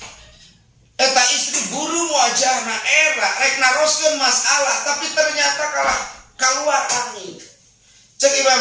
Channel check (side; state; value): both; identical; correlation 1.00